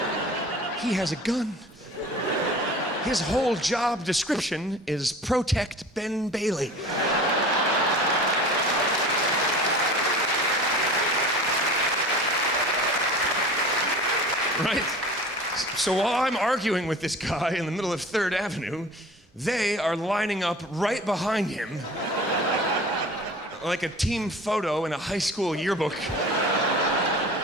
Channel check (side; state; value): both; normal; correlation 0.40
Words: He has a gun. His whole job description is protect Ben Bailey. Right? So while I'm arguing with this guy in the middle of 3rd Avenue, they are lining up right behind him like a team photo in a high school yearbook.